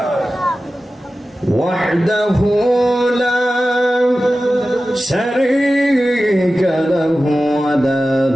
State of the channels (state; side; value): normal; both; correlation 0.95